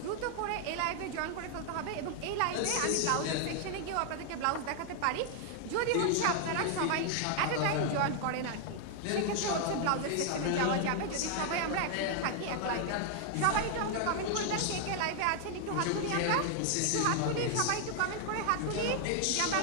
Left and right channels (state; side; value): different; both; correlation 0.00